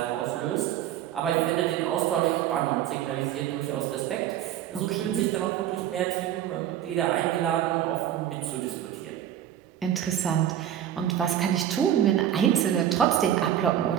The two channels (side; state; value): left; quieter; 11.0 dB